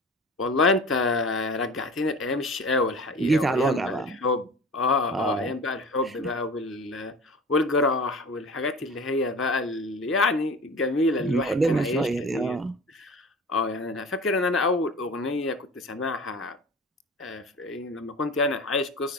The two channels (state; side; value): normal; both; correlation 0.37